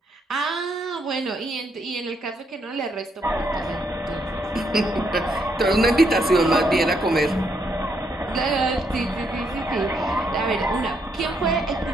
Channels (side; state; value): both; normal; correlation 0.75